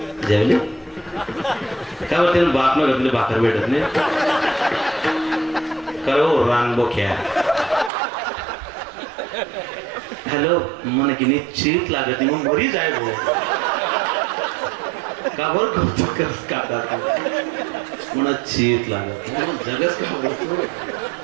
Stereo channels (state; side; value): drops out; left; at 7.9 s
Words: जेवले काय होते बाप न घातले भाकर भेटत नाही करो रान बोख्या. हॅलो मन की निश्चित लागत मग बरी जाय भाऊ का बर कौतुक करस का म्हणून चीत लागत जगच का बोलतो.